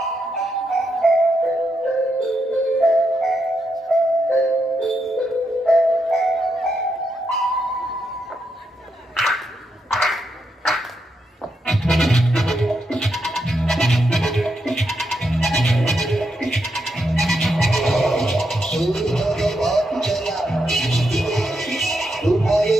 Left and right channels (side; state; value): both; normal; correlation 0.82